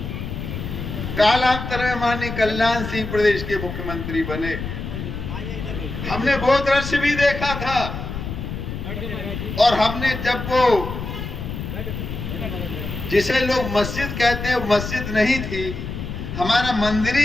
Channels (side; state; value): left; noise; rumble, 6 dB below the sound